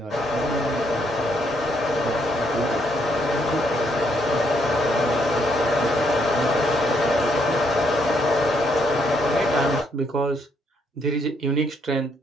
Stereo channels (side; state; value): both; normal; correlation 0.72